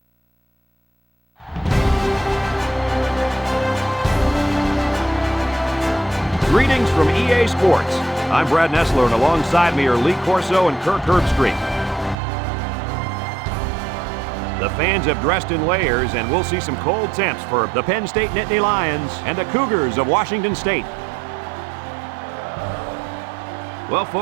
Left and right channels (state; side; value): drops out; left; at 12.2 s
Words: Greetings from EA Sports. I'm Brad Nessler, and alongside me are Lee Corso and Kirk Herbstreit. The fans have dressed in layers, and we'll see some cold temps for the Penn State Nittany Lions and the Cougars of Washington State. Well,